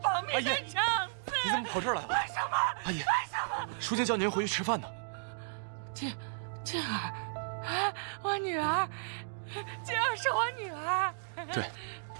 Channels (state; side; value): silent; left; digital silence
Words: 保密的长子。你怎么跑这儿来了？为什么？阿姨，为什么？舒静叫您回去吃饭呢。静儿，我女儿，静儿是我女儿。对，